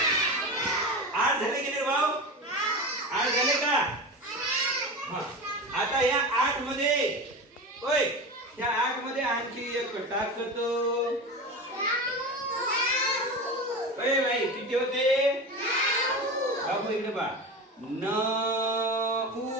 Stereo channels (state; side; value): normal; both; correlation 0.26